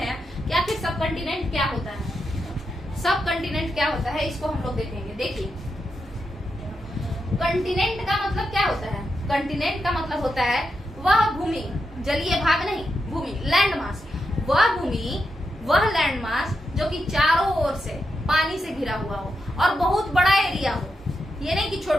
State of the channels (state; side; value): normal; both; correlation 0.86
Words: कि आखिर सब कंटिनेंट क्या होता है। सब कंटिनेंट क्या होता है इसको हम लोग देखेंगे। देखिए कंटिनेंट का मतलब क्या होता है? कंटिनेंट का मतलब होता है वह भूमि, जलीय भाग नहीं, भूमि, लैंड मास, वह लैंड मास जो कि चारों ओर से पानी से घिरा हुआ हो और बहुत बड़ा एरिया हो। ये नहीं कि